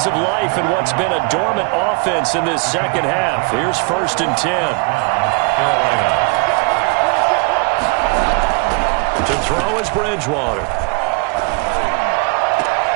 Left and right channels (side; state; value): left; quieter; 30.1 dB